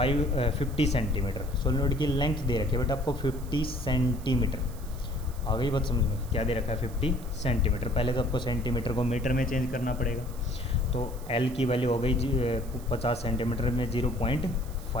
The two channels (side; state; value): right; noise; hiss, 20 dB below the sound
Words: centimetre. Solenoid की लेंथ दे रखी है बेटा आपको 50 सेंटीमीटर। आ गई बात समझ में, क्या दे रखा है 50 सेंटीमीटर। पहले तो आपको सेंटीमीटर को मीटर में चेंज करना पड़ेगा। तो एल की वैल्यू हो गई 50 सेंटीमीटर में